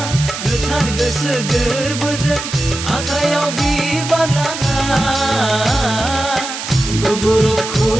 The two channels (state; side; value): noise; right; hiss, 7 dB below the sound